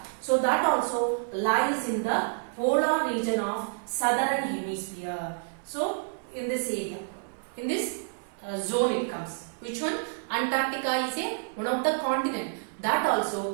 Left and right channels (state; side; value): silent; left; 59 dB below the other